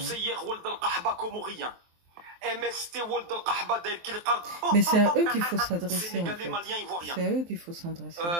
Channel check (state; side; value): late; left; 23 ms